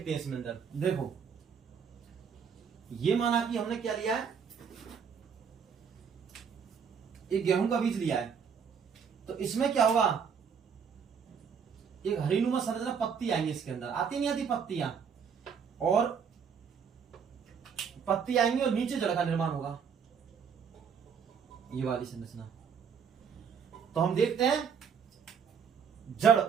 हैं इसमें अंदर। देखो, ये माना कि हमने क्या लिया है? एक गेहूं का बीज लिया है। तो इसमें क्या होगा? एक हरीनुमा संरचना, पत्ती आएंगी इसके अंदर। आती नहीं आती पत्तियां? और पत्ती आएंगी और नीचे जड़ का निर्माण होगा, ये वाली संरचना। तो हम देखते हैं जड़,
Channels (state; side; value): quieter; left; 6.8 dB